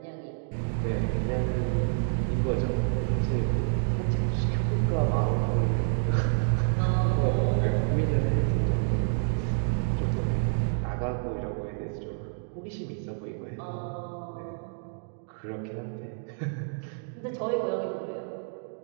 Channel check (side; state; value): left; silent; digital silence